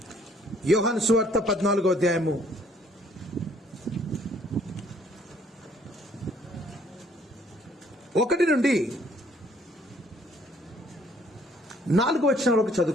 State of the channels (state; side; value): normal; both; correlation 0.62